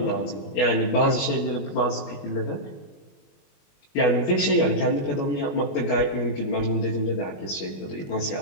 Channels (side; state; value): right; late; 21 ms